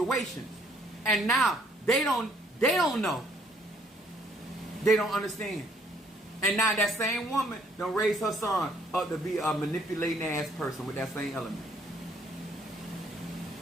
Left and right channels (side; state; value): both; normal; correlation 0.64